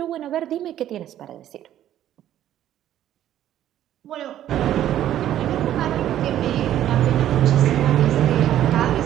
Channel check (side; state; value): left; quieter; 11.9 dB